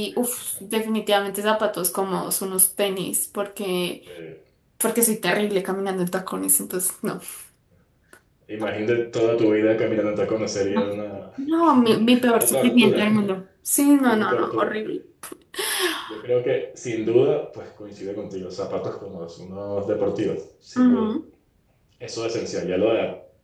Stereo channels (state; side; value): identical; both; correlation 1.00